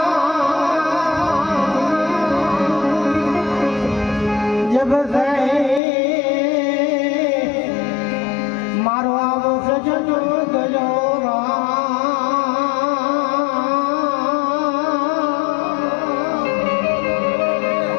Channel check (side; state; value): right; drops out; at 5.8 s